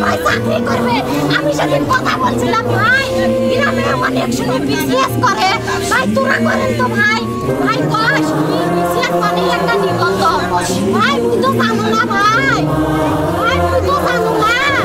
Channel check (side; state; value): both; identical; correlation 1.00